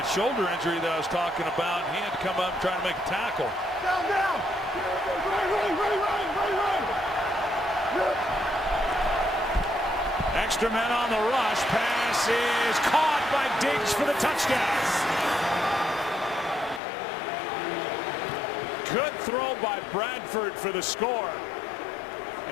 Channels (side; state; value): right; drops out; at 16.8 s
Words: shoulder injury that I was talking about. He had to come up and try to make a tackle. Down. Extra men on the rush. Pass is caught by Diggs for the touchdown. Good throw by Bradford for the score.